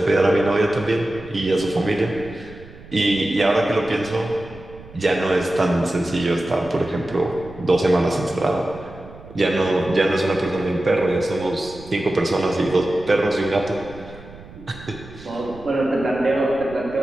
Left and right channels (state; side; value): noise; right; rumble, 19 dB below the sound